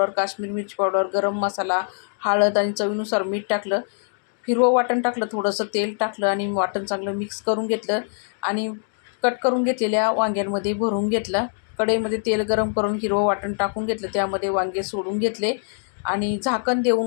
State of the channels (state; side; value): silent; right; 63 dB below the other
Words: काश्मीर मिरची पावडर, गरम मसाला, हळद आणि चवीनुसार मीठ टाकलं. हिरवं वाटण टाकलं, थोडंसं तेल टाकलं आणि वाटण चांगलं मिक्स करून घेतलं आणि कट करून घेतलेल्या वांग्यांमध्ये भरून घेतलं. कढईमध्ये तेल गरम करून हिरवं वाटण टाकून घेतलं. त्यामध्ये वांगे सोडून घेतले आणि झाकण